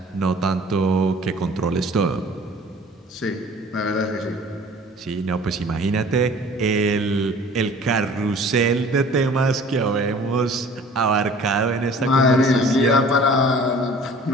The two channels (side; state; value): both; normal; correlation 0.48